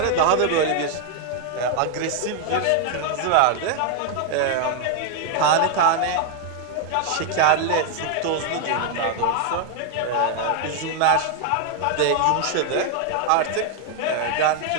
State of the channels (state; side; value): different; both; correlation 0.00